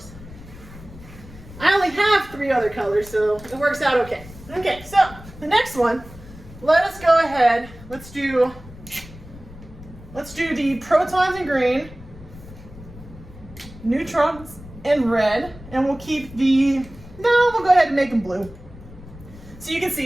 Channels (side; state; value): left; noise; rumble, 18 dB below the sound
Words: I only have 3 other colors, so it works out okay. Okay, so the next one, let us go ahead. Let's do the protons in green, neutrons in red, and we'll keep we'll go ahead and make them blue. So you can